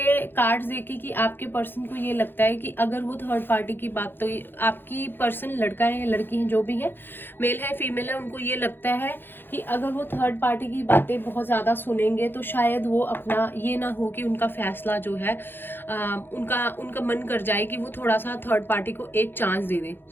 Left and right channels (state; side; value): late; right; 0.10 ms